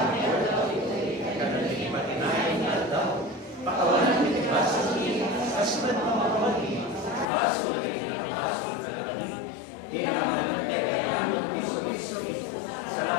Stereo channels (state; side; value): drops out; right; at 7.2 s